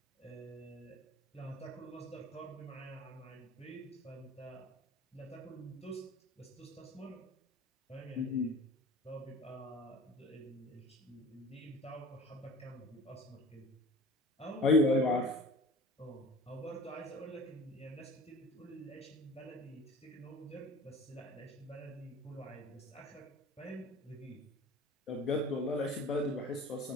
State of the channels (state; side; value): normal; both; correlation 0.42